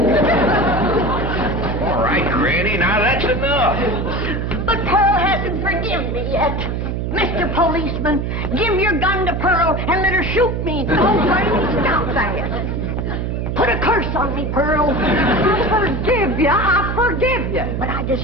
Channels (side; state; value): right; noise; hum, 2 dB below the sound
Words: All right, Granny, now that's enough. But Pearl hasn't forgiven me yet. Mr. Policeman, give your gun to Pearl and let her shoot me. Oh, Granny, stop that. Put a curse on me, Pearl. I forgive you. But I